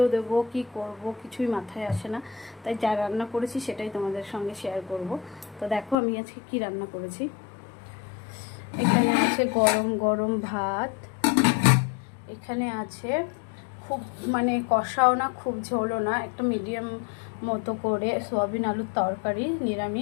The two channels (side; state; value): right; drops out; at 6.0 s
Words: দেব, কি করব কিছুই মাথায় আসে না, তাই যা রান্না করেছি সেটাই তোমাদের সঙ্গে শেয়ার করব। তো দেখো আমি আজকে কি রান্না করেছি। এখানে আছে গরম গরম ভাত, এখানে আছে খুব কষাও না খুব ঝোলও না, একটা মিডিয়াম মতো করে সয়াবিন আলুর তরকারি